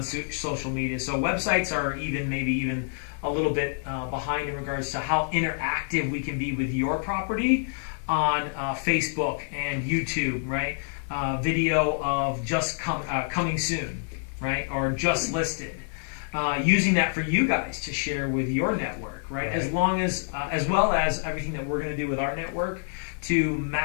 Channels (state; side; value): silent; right; 60 dB below the other